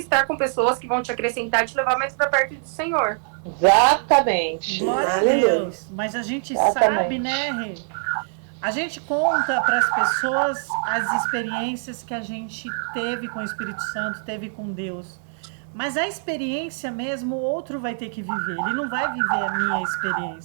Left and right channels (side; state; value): left; silent; digital silence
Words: com pessoas que vão te acrescentar e te levar mais para perto do Senhor. Exatamente. Glória a Deus. Mas a gente sabe, né, Rê? A gente conta para as pessoas as experiências que a gente teve com o Espírito Santo, teve com Deus. Mas a experiência mesmo, o outro vai ter que viver. Ele não vai viver a minha